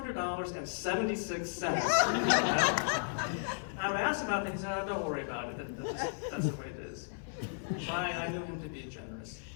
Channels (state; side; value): silent; right; 55 dB below the other